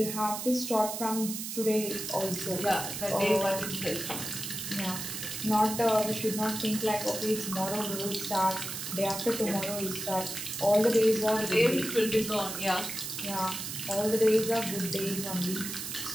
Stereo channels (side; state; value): right; noise; hiss, 6 dB below the sound